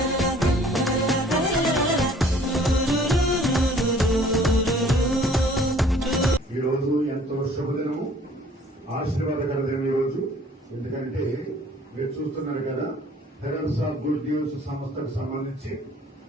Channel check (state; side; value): normal; both; correlation 0.54